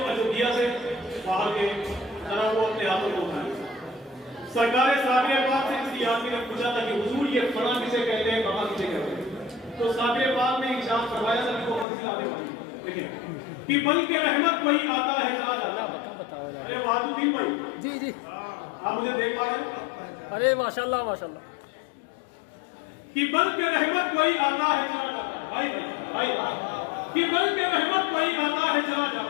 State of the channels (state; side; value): drops out; right; at 11.9 s